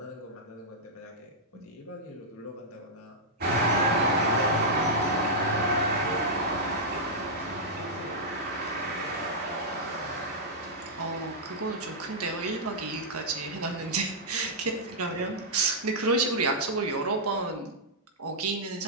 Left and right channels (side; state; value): both; normal; correlation -0.09